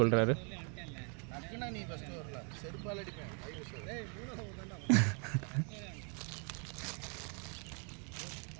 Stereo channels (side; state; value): left; quieter; 37.9 dB